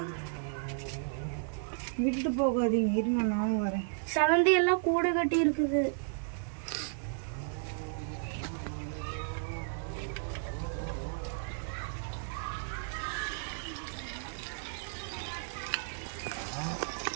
விட்டுட்டு போகாதீங்க, இருங்க நானும் வரேன். சலந்தி எல்லாம் கூடு கட்டி இருக்குது.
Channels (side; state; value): left; silent; 55 dB below the other